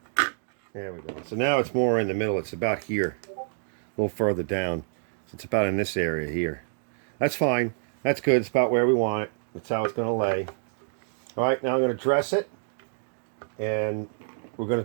There we go. So now it's more in the middle. It's about here, a little further down. So it's about in this area here. That's fine. That's good. It's about where we want it. That's how it's going to lay. All right, now I'm going to dress it. And we're going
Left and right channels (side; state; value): left; silent; digital silence